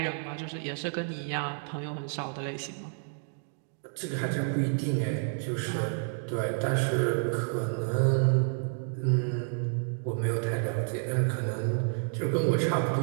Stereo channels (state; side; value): silent; left; 58 dB below the other